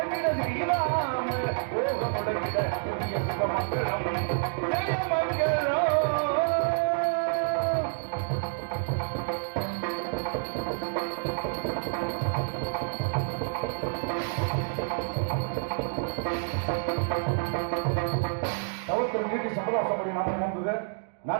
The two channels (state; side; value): silent; left; digital silence